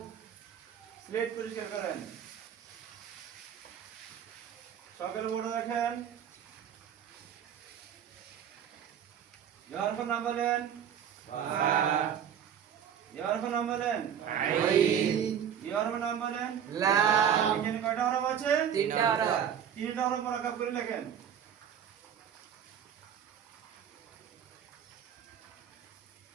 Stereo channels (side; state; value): left; quieter; 8.8 dB